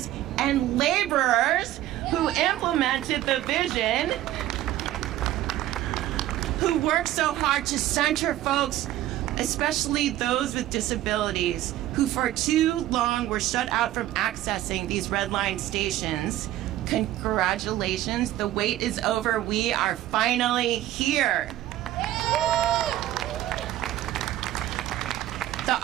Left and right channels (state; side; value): quieter; left; 14.1 dB